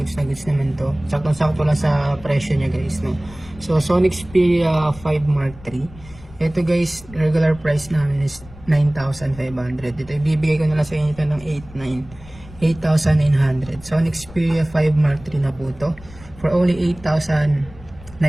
na goods naman to. Saktong-sakto lang sa presyo niya guys, no? So Sony Xperia 5 Mark III. Ito guys, regular price namin is 9,500. Ito ibibigay ko na lang sa inyo ito ng 8,900. Sony Xperia 5 Mark III na po to for only 8,900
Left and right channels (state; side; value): noise; left; rumble, 19 dB below the sound